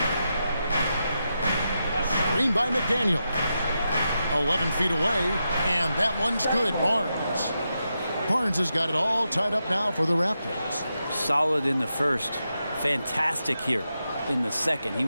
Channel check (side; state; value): both; inverted; correlation -0.87